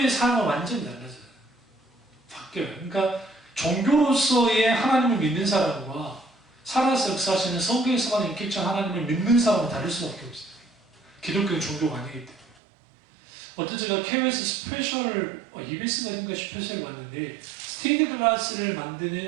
삶은 완전히 달라져요. 바뀌어요. 그러니까 종교로서의 하나님을 믿는 사람과 살아서 역사하시는 성경에서만 인격적 하나님을 믿는 사람은 다를 수밖에 없어요. 기독교는 종교가 아니기 때문에. 어떤 제가 KBS 스페셜, EBS가 아닌가 스페셜을 봤는데 스테인드 글라스를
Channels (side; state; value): left; drops out; at 12.6 s